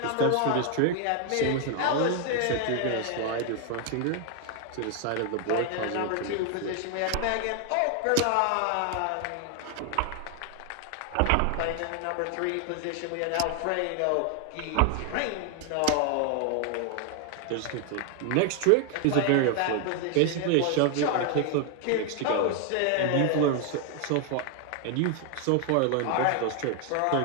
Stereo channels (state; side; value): different; both; correlation 0.00